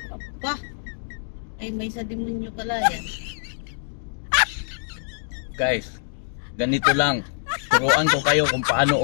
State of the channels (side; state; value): right; silent; digital silence